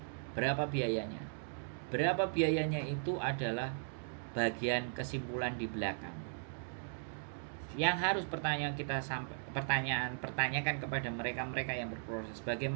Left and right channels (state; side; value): silent; left; digital silence